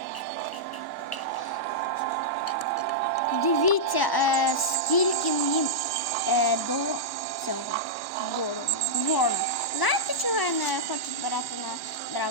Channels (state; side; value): late; right; 1.1 ms